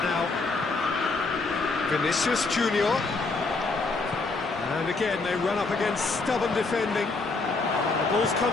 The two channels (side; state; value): right; quieter; 3.7 dB